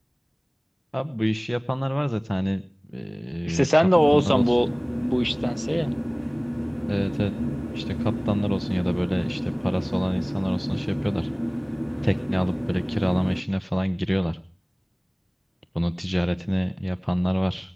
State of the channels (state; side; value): identical; both; correlation 1.00